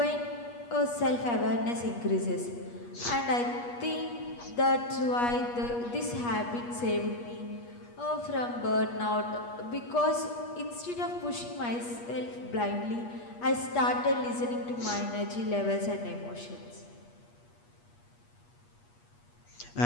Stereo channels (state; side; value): late; right; 8.4 ms